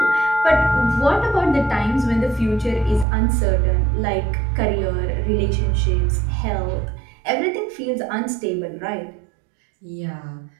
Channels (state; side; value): drops out; left; at 3.1 s